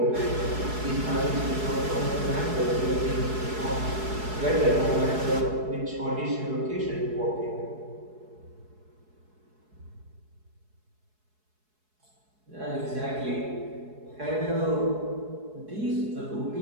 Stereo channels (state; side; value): late; left; 4.7 ms